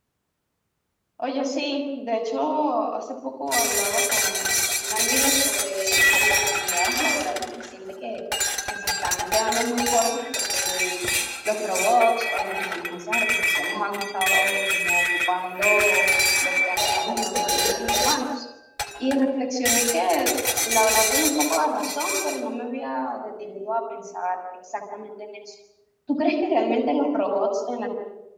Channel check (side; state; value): both; identical; correlation 1.00